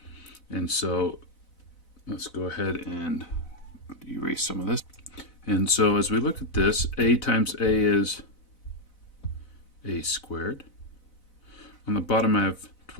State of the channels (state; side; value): late; right; 4.0 ms